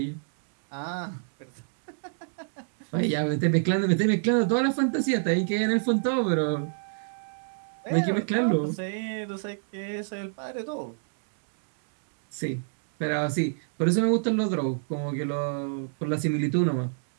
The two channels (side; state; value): left; silent; digital silence